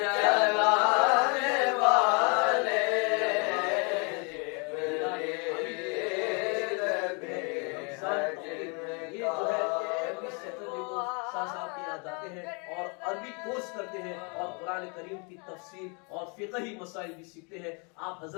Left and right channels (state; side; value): quieter; right; 34.1 dB